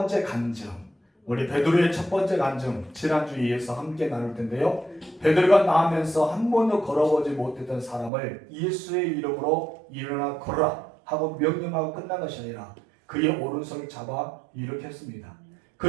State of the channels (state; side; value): drops out; left; at 8.1 s